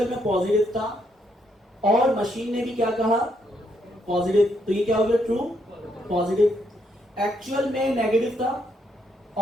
में पॉजिटिव था और मशीन ने भी क्या कहा, पॉजिटिव, तो ये क्या हो गया, ट्रू पॉजिटिव। एक्चुअल में नेगेटिव था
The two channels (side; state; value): both; normal; correlation 0.75